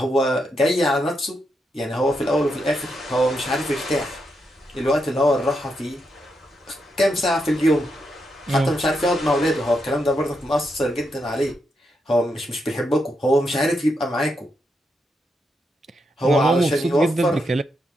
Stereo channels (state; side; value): normal; both; correlation 0.82